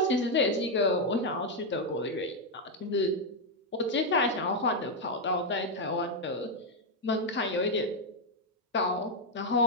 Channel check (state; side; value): normal; both; correlation 0.00